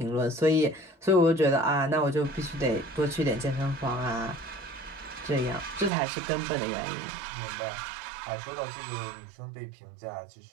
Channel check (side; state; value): left; drops out; at 5.9 s